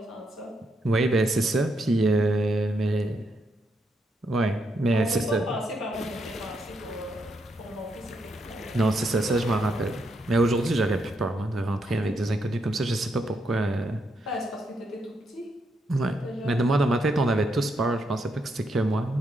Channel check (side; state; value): both; normal; correlation 0.79